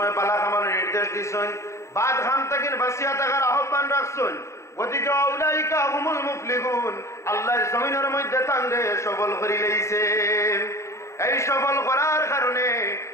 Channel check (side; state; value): right; late; 0.14 ms